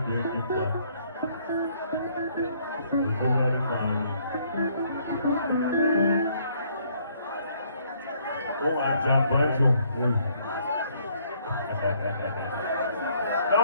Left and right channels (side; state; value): both; inverted; correlation -0.65